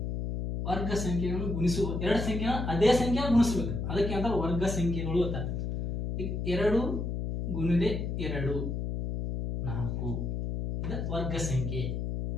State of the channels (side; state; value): left; noise; hum, 2 dB below the sound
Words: ವರ್ಗ ಸಂಖ್ಯೆಗಳನ್ನು ಗುಣಿಸುವ ಎರಡು ಸಂಖ್ಯೆಗಳ ಅದೇ ಸಂಖ್ಯೆ ಗುಣಿಸ್ಬೇಕು, ಅದಕ್ಕೆ ಅಂತ ವರ್ಗ ಸಂಖ್ಯೆಗಳು ಅಂತ. ಈಗ 2 ಗುಣಿಲೆ 2 4 ಇದು ವರ್ಗ ಸಂಖ್ಯೆ.